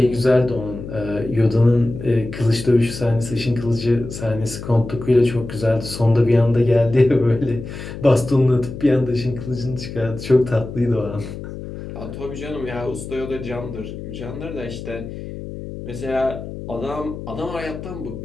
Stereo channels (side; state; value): left; noise; hum, 10 dB below the sound